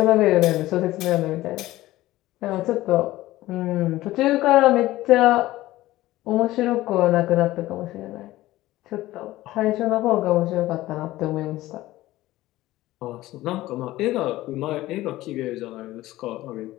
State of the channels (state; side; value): quieter; right; 16.7 dB